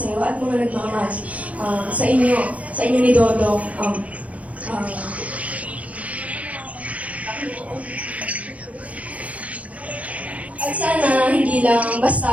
iyo at mga nagmamahal sa inyo ni Dodong. At sana hindi lang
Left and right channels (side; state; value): left; late; 0.067 ms